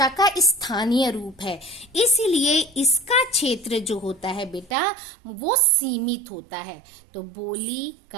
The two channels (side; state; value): left; drops out; at 4.8 s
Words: का स्थानीय रूप है, इसलिए इसका क्षेत्र जो होता है बेटा वो सीमित होता है। तो बोली